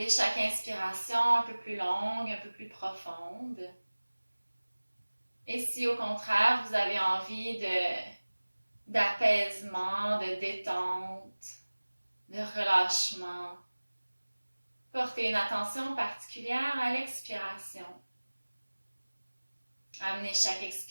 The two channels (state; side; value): inverted; both; correlation -1.00